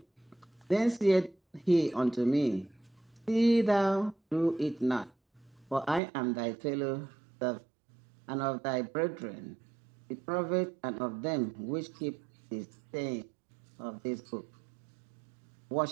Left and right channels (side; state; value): left; drops out; at 6.0 s